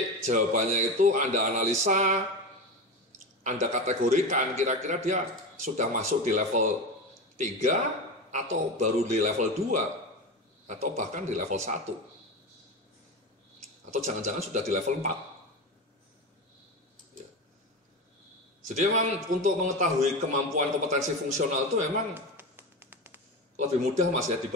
jawabannya itu Anda analisa, Anda kategorikan kira-kira dia sudah masuk di level 3 atau baru di level 2 atau bahkan di level 1 atau jangan-jangan sudah di level 4 ya. Jadi memang untuk mengetahui kemampuan kompetensi fungsional itu memang lebih mudah Mas ya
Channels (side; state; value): both; normal; correlation 0.22